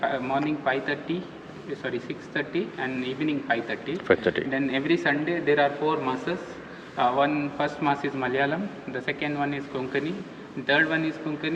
morning 5:30. Sorry, 6:30 and evening 5:30. 5:30. Then every Sunday there are 4 masses. First mass is Malayalam. The second one is Konkani. Third one is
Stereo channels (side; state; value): both; identical; correlation 1.00